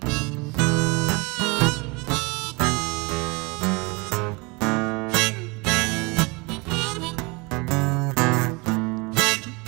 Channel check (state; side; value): quieter; left; 27.6 dB